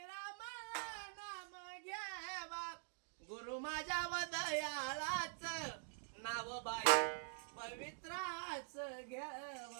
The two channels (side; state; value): left; silent; digital silence